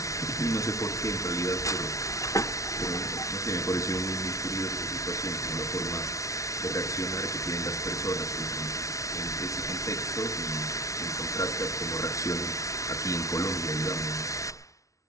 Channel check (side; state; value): right; late; 0.15 ms